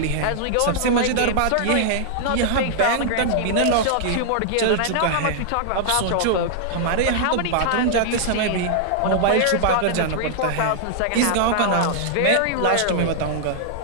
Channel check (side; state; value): both; different; correlation -0.01